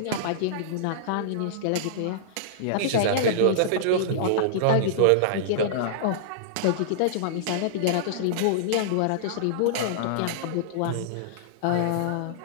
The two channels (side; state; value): both; different; correlation -0.02